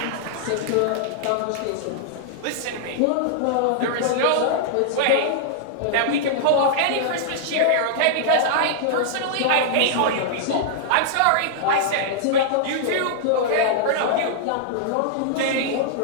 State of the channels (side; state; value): both; different; correlation -0.02